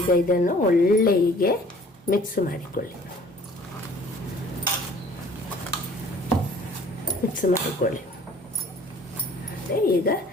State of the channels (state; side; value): normal; both; correlation 0.52